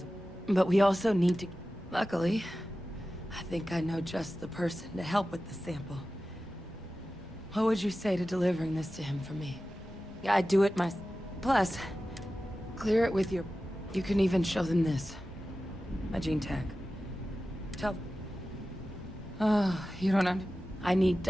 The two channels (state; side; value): normal; both; correlation 0.94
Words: but we also need to... Luckily, I think I know just the person to help with the sample. What would you say to delivering this to him for me? Yeah, I'd do it myself. Plus, clear it with your... You can even show them this. My gene tag. Tell... Oh, you don't I need